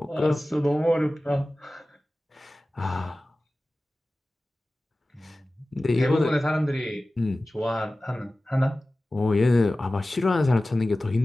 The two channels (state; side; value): normal; both; correlation 0.96